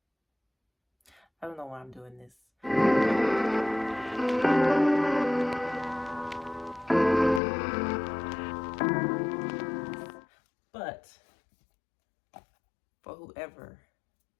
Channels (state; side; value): drops out; right; at 7.4 s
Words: I don't know why I'm doing this. But for whoever